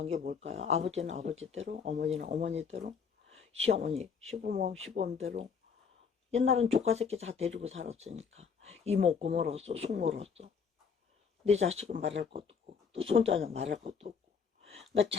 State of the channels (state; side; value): quieter; right; 6.1 dB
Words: 게 뭘까요? 아버지는 아버지대로, 어머니는 어머니대로, 시어머니, 시부모, 시부모대로. 옛날엔 조카 새끼 다 데리고 살았으니까 이모 고모로서 숙모로서 내 자식은 말할 것도 없고 또 손자는 말할 것도 없고. 그러니까